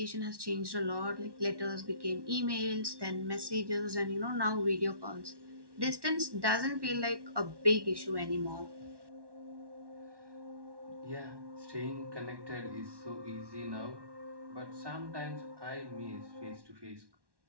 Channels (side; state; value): left; late; 1.1 ms